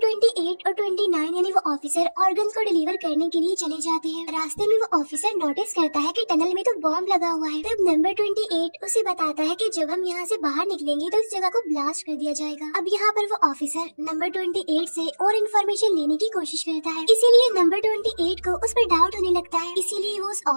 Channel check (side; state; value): both; inverted; correlation -1.00